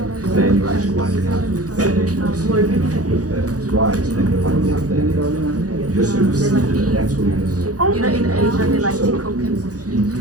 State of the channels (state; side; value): late; left; 0.67 ms